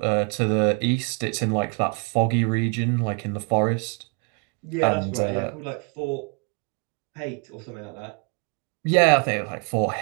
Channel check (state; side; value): quieter; left; 35.4 dB